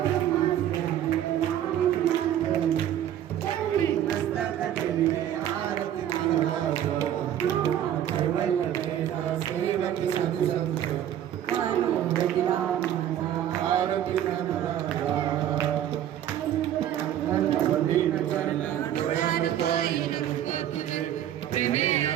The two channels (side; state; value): left; quieter; 11.1 dB